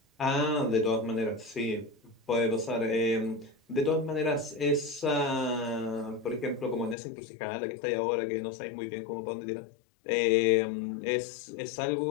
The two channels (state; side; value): drops out; right; at 7.0 s